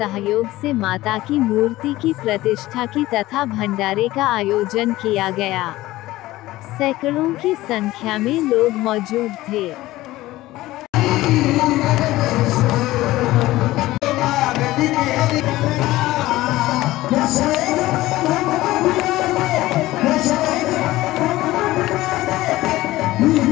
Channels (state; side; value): quieter; right; 17.2 dB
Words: से माता की मूर्ति की प्रतिष्ठा की तथा भंडारे का आयोजन किया गया। सैकड़ों की संख्या में लोग मौजूद थे।